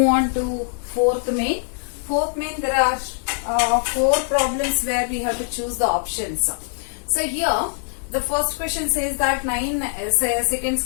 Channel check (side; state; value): right; silent; 64 dB below the other